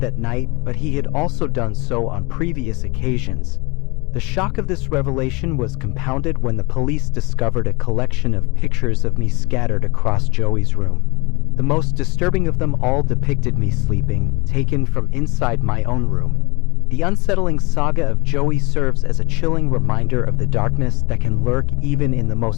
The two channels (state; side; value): quieter; right; 25.1 dB